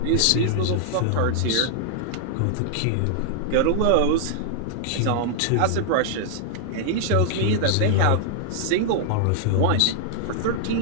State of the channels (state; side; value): different; both; correlation -0.01